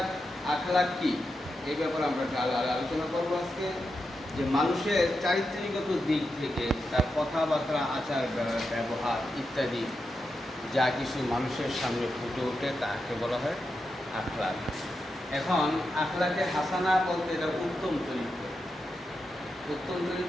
আখলাক কি, এই ব্যাপারে আমরা আলোচনা করবো আজকে। যে মানুষের চারিত্রিকগত দিক থেকে তার কথাবার্তা, আচার ব্যবহার ইত্যাদি যা কিছু মানুষের সামনে ফুটে ওঠে তাকে বলা হয় আখলাক। এখন আখলাকে হাসানা বলতে এটা উত্তম চরিত্র। উত্তম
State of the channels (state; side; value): normal; both; correlation 0.87